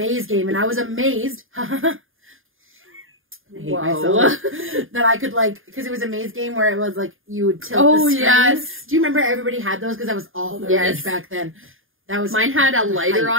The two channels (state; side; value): late; left; 0.59 ms